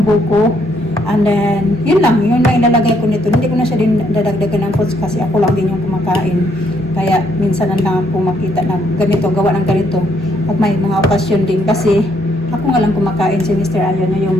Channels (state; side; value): normal; both; correlation 0.71